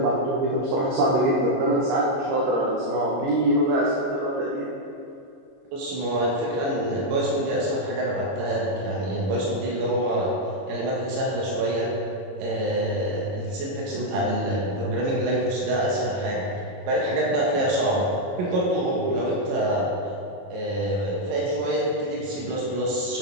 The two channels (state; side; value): late; left; 22 ms